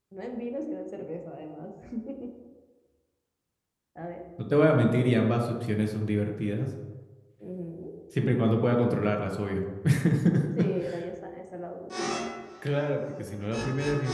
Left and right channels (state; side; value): identical; both; correlation 1.00